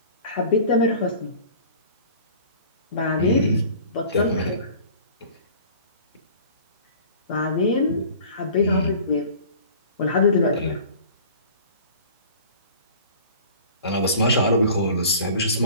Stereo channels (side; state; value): both; inverted; correlation -0.45